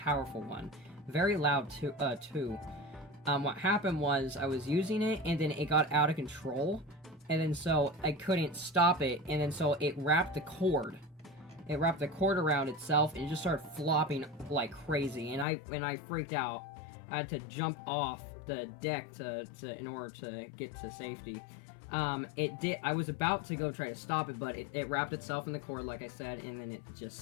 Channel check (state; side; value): drops out; right; at 15.5 s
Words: one, very loud too. What happened was I was using it, and then it got out of control, and then so I couldn't stop it, and then so it wrapped the cord. It wrapped the cord around itself, and it just started flopping like crazy, and I freaked out. I had to jump off the deck in order to get to safety. I was about to go try to stop it, but it wrapped itself in the cord, like I said, and then it just